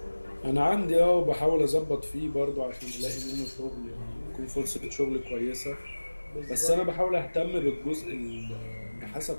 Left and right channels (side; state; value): both; inverted; correlation -1.00